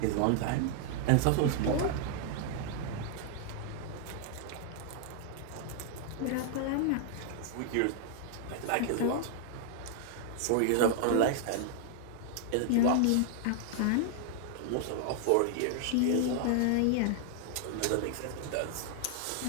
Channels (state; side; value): different; both; correlation 0.00